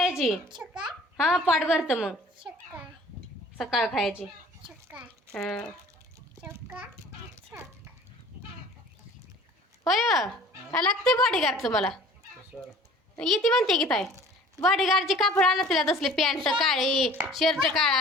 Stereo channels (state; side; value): normal; both; correlation 0.49